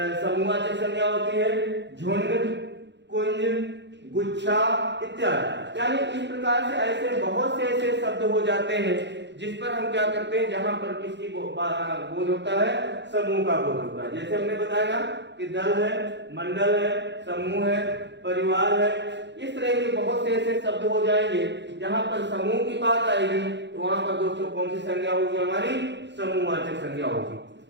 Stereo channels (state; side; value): late; left; 0.52 ms